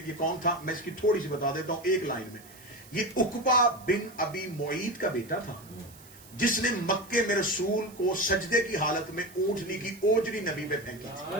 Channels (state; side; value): noise; right; hiss, 22 dB below the sound